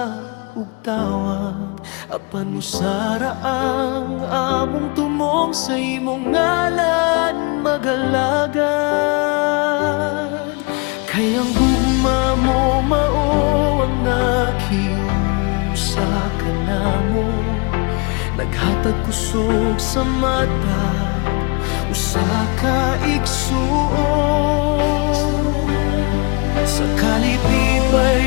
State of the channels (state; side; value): quieter; right; 30.3 dB